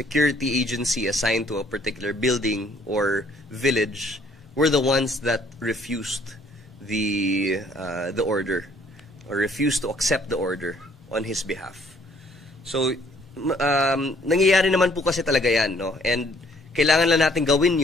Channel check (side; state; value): both; normal; correlation 0.61